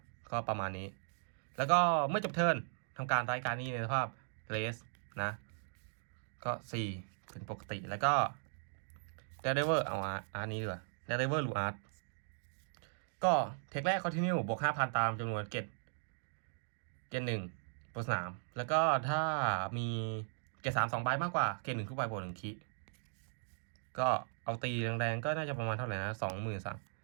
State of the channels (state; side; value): silent; left; digital silence